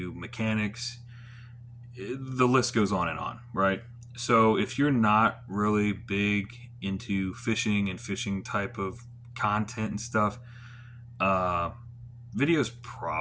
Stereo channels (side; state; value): both; identical; correlation 1.00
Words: mechanics. The list goes on, right? So if you're not really big into fishing and fishing type of content and stuff, uh, video's